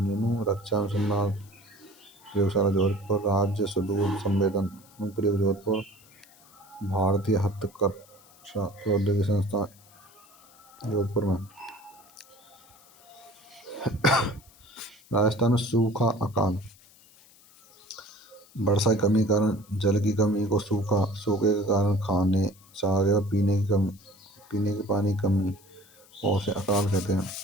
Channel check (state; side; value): noise; left; hiss, 26 dB below the sound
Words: रक्षा अनुसंधान प्रयोगशाला जोधपुर, राज्य सुदूर संवेदन अनुप्रयोग जोधपुर, भारतीय हस्तकरघा प्रौद्योगिकी संस्थान जोधपुर में। राजस्थान में सूखा अकाल, वर्षा की कमी के कारण जल की कमी को सूखे के कारण खाने, चारे और पीने के पानी की कमी और उसे अकाल कहते हैं।